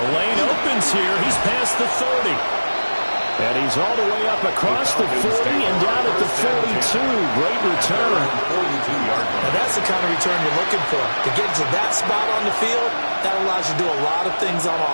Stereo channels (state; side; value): inverted; both; correlation -1.00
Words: lane opens here. He's past the 30. And he's all the way up across the 40 and down at the 42. Great return. And that's the kind of return you're looking for. To get to that spot on the field, that allows you to do a lot of things on